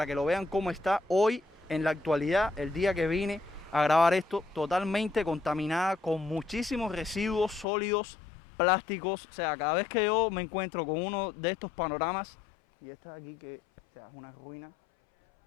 que lo vean cómo está hoy en la actualidad, el día que vine a grabar esto, totalmente contaminada con muchísimos residuos sólidos, plásticos. O sea, cada vez que yo me encuentro con uno de estos panoramas, y esta de aquí que, o sea, es una ruina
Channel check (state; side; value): drops out; right; at 7.7 s